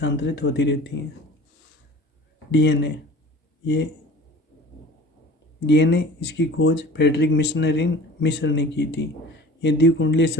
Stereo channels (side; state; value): both; normal; correlation 0.42